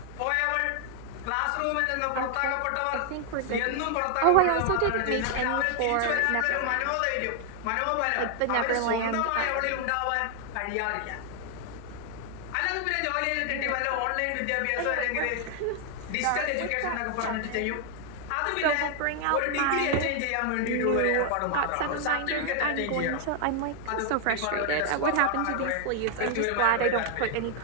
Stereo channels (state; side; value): different; both; correlation 0.00